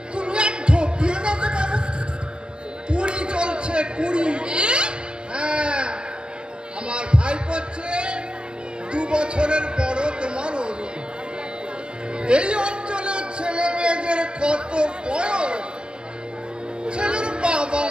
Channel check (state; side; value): late; left; 0.051 ms